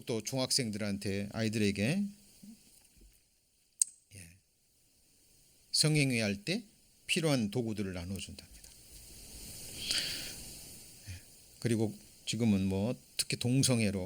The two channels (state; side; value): identical; both; correlation 1.00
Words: 중학생들한테 아이들에게 성행위 할 때 필요한 도구들을 나눠준답니다. 그리고 지금은 뭐 특히